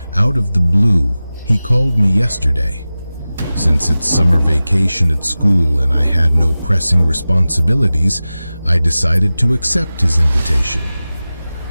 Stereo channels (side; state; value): both; inverted; correlation -0.96